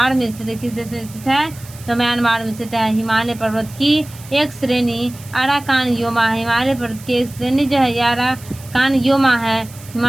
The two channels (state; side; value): noise; right; hiss, 19 dB below the sound